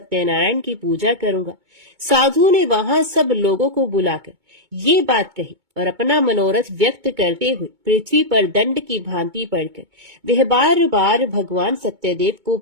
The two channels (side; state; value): left; late; 2.2 ms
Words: की पूजा करूंगा। साधु ने वहां सब लोगों को बुलाकर ये बात कही और अपना मनोरथ व्यक्त करते हुए पृथ्वी पर दंड की भांति पड़कर वह बार बार भगवान सत्यदेव को